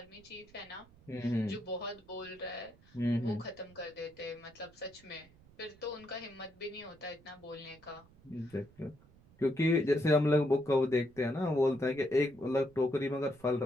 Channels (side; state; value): right; noise; rumble, 26 dB below the sound